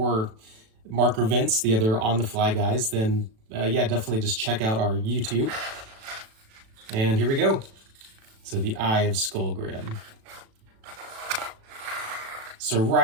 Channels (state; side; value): late; left; 37 ms